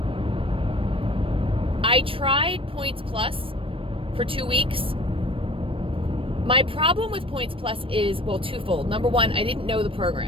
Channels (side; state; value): left; late; 0.26 ms